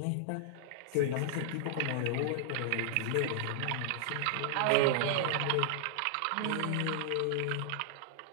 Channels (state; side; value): different; both; correlation -0.01